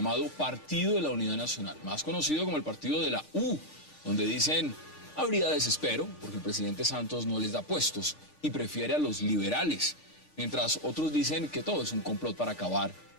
Partido de la Unidad Nacional, más conocido como el Partido de la U, donde dicen habría desespero porque el presidente Santos no les da puestos y prefiere a los liberales, mientras otros dicen que todo es un complot para acabar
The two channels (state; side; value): late; right; 6.5 ms